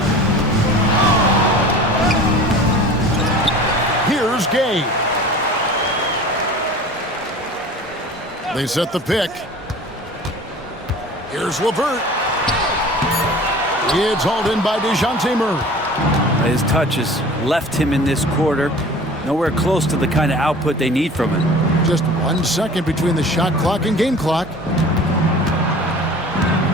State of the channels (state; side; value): normal; both; correlation 0.42